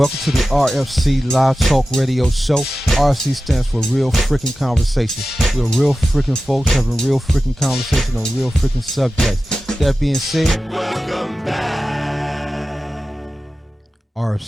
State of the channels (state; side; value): normal; both; correlation 0.94